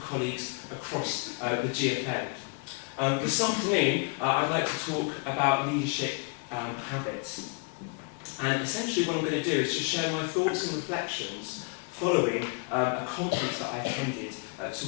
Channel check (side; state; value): right; quieter; 33.3 dB